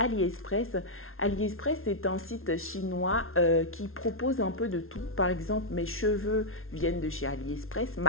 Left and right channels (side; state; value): right; late; 0.61 ms